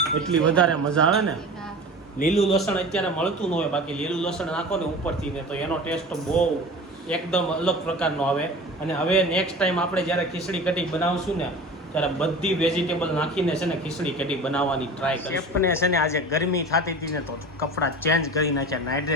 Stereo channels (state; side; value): normal; both; correlation 0.35